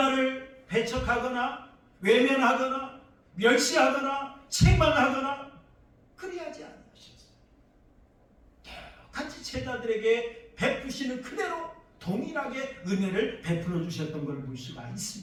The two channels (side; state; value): both; identical; correlation 1.00